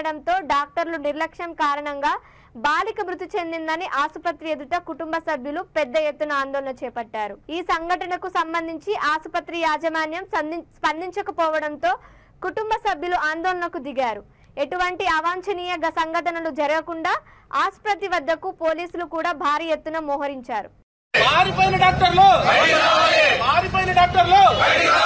డాక్టర్లు నిర్లక్ష్యం కారణంగా బాలిక మృతి చెందిందని ఆసుపత్రి ఎదుట కుటుంబ సభ్యులు పెద్ద ఎత్తున ఆందోళన చేపట్టారు. ఈ సంఘటనకు సంబంధించి ఆసుపత్రి యాజమాన్యం స్పందించకపోవడంతో కుటుంబ సభ్యులు ఆందోళనకు దిగారు. ఎటువంటి అవాంఛనీయ సంఘటనలు జరగకుండా ఆసుపత్రి వద్దకు పోలీసులు కూడా భారీ ఎత్తున మోహరించారు. పారిపోయిన డాక్టర్లు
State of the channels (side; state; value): both; identical; correlation 1.00